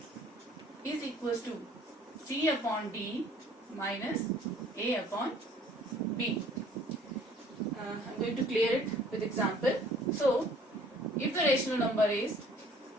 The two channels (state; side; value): normal; both; correlation 0.55